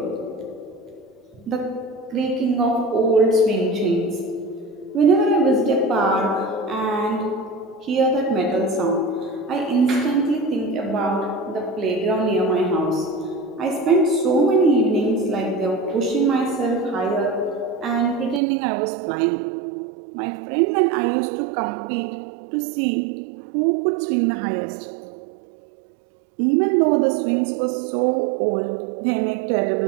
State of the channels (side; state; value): left; drops out; at 18.4 s